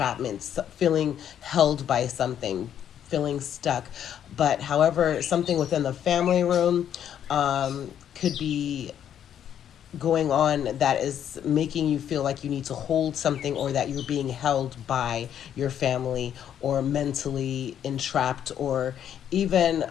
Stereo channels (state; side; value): quieter; right; 9.7 dB